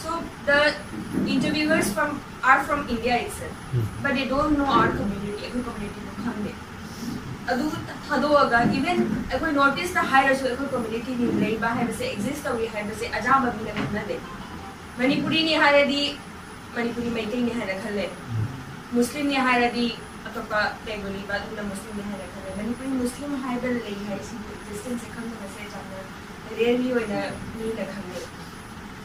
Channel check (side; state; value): both; identical; correlation 1.00